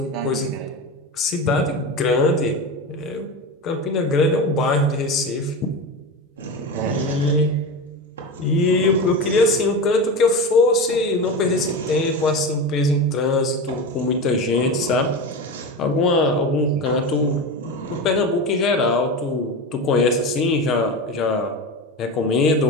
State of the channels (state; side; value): normal; both; correlation 0.23